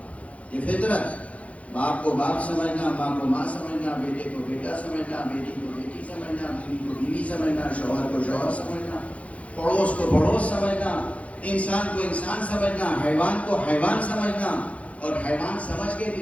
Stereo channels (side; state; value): right; late; 0.065 ms